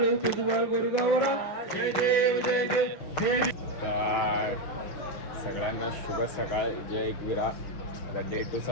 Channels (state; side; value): late; right; 6.6 ms